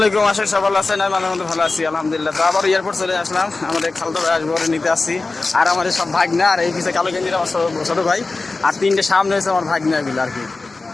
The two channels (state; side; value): quieter; right; 3.6 dB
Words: আশা করি সবাই ভালো আছেন। আমি আমাদের ভালো আছি আলহামদুলিল্লাহ। তো আবার এয়ারপোর্ট চলে আসলাম, আমাদের খালতো ভাই আসবো, নিতে আসছি। আর আমাদের সব ভাগনা, আর এই পিছিয়ে কালো গেঞ্জির আমার ছোট ভাই, আর তিনটে সামনে হয়েছে আমার ভাগনা এগুলো আর কি।